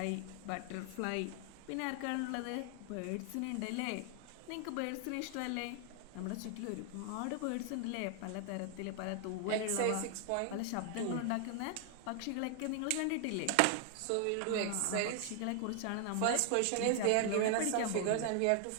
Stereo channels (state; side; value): different; both; correlation 0.00